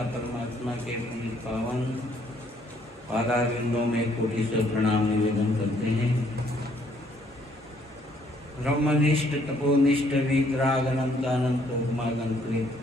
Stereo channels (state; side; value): normal; both; correlation 0.66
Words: परमात्मा के पुनीत पावन पादारविंदों में कोटि से प्रणाम निवेदन करते हैं। ब्रह्मनिष्ठ तपोनिष्ठ वितराग अनंत अनंत उपमागंकृत